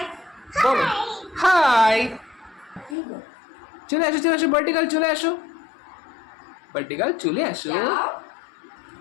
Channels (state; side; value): drops out; right; at 3.0 s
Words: বলো হাই। চলে আসো ভার্টিকাল, চলে আসো ভার্টিকাল, চলে আসো।